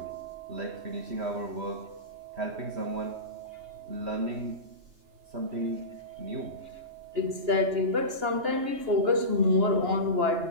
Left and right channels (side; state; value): left; late; 2.9 ms